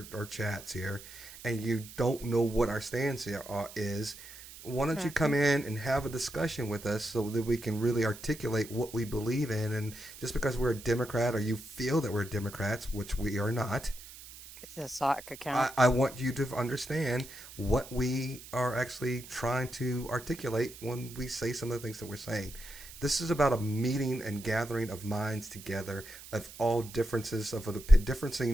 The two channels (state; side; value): noise; right; hiss, 16 dB below the sound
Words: chats here, and you don't know what our stance here is, why don't you come in and have a discussion with us so that we can really articulate what we believe in? And just because we're a Democrat or you feel that we're Democrats, which we are not, It's a sock account. I want you to understand what we are actually trying to articulate when we say some of the things that we're saying. This is about a meeting and gathering of minds together of all differences of